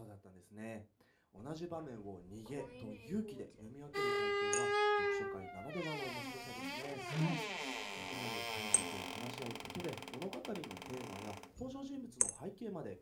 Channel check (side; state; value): both; identical; correlation 1.00